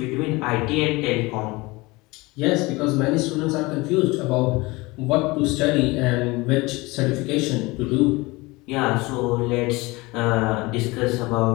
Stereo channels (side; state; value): right; quieter; 23.0 dB